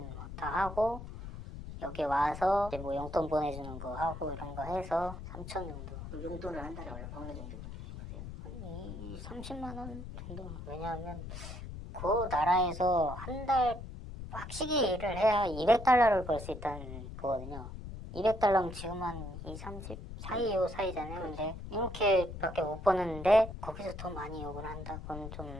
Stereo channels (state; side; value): noise; left; rumble, 10 dB below the sound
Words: 뭐 다 하고 여기 와서 이제 뭐 용돈 보내주는 거 하고 이런 거 해서 3천 정도. 그럼 용돈을 한 달에 어느 정도 보내신 거세요? 한 30만 원 정도. 왜냐하면 그 나라에서 한 달 빡시게 일을 해야 200달러를 벌 수 있다는 거거든요. 200달러면 지금 한 2, 30 사이잖아요. 근데 이렇게밖에 못 버는데 거기서 더 많이 욕을 한다. 그건